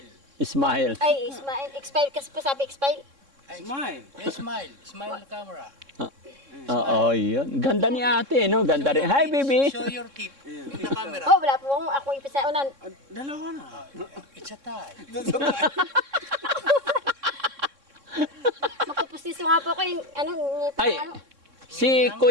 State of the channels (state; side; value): late; left; 3.6 ms